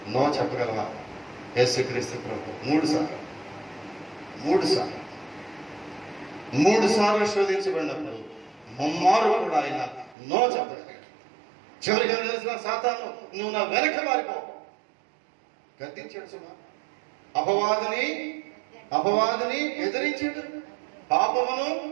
నో చెప్పగలవా? యేసుక్రీస్తు ప్రభు 3 సార్లు శోధించబడినప్పుడు ముమ్మారు కూడా ఆయన నో చెప్పగలిగాడు. చివరిగా తెలిసిన సాతాను నువ్వు నా వెనక మారిపో గద్దించాడు. సుమా అపవాదిని ఎదిరించాడు, పాపమును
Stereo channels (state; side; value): drops out; left; at 10.2 s